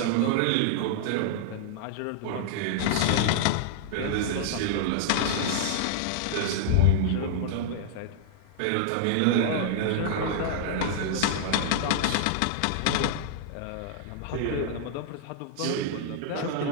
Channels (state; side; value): different; both; correlation -0.01